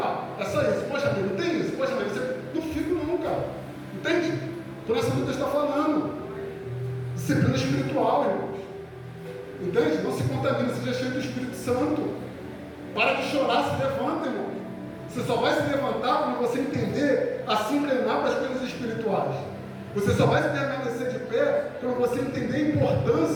ó, é só isso, poxa, mãe, não tem isso, poxa, mãe, você não fica não, cara. Entende? Por essa luta está falando. Disciplina espiritual, irmãos. Entende? Não se contamina, seja cheio do Espírito Santo. Para de chorar, se levanta, irmão. Você só vai se levantar quando você entender a se inclinar para as coisas espirituais. Você só vai se permanecer de pé quando você entender a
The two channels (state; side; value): identical; both; correlation 1.00